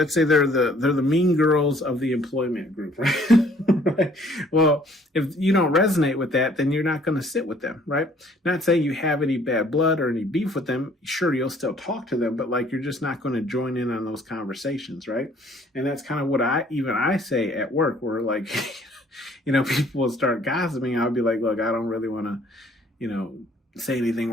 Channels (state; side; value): normal; both; correlation 0.59